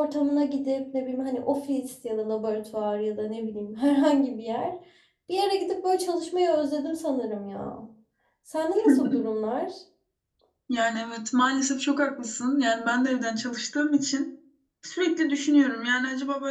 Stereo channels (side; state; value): both; identical; correlation 1.00